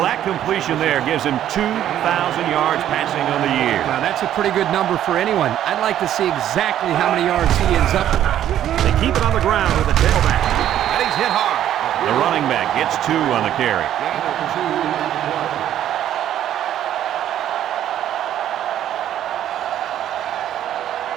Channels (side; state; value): left; quieter; 11.3 dB